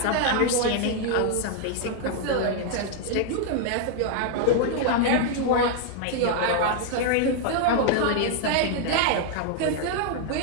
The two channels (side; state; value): both; different; correlation 0.00